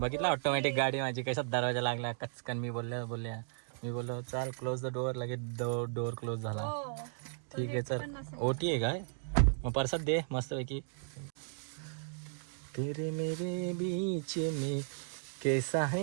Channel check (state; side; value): silent; left; digital silence